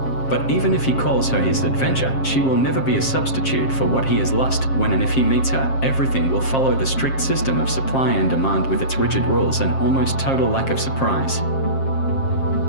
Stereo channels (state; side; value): late; right; 7.5 ms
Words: But even if he calls her his adventure, she will never be a substitute for what he has lost. When and if he meets her, everything will follow the strict system of supply and demand with its rigid rules and almost total lack of surprise.